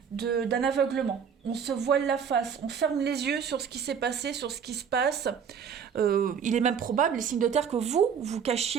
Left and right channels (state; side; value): quieter; left; 7.3 dB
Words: d'un aveuglement. On se voile la face, on ferme les yeux sur ce qui s'est passé, sur ce qui se passe. Il est même probable, les signes de terre, que vous